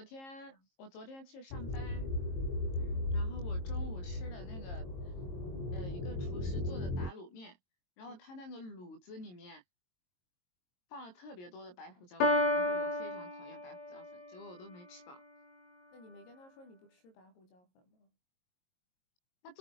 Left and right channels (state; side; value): late; right; 22 ms